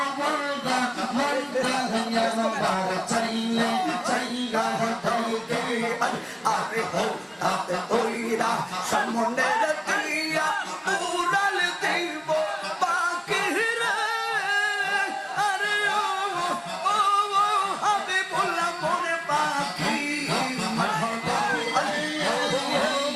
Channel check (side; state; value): both; identical; correlation 1.00